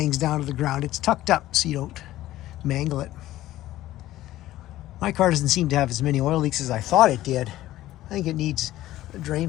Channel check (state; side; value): quieter; right; 15.0 dB